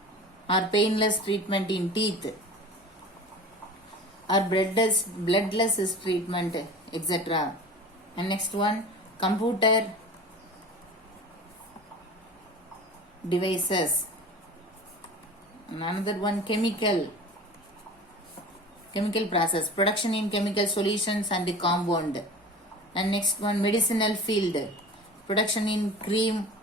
or painless treatment in teeth, or bloodless treatment, etc. And next one, computer devices. And another one, chemical process, production in chemical solutions and compound. And next one, medicinal field, production in cream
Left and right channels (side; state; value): both; normal; correlation 0.37